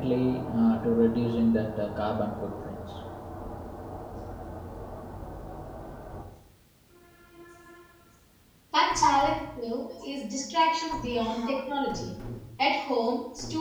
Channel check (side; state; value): both; identical; correlation 1.00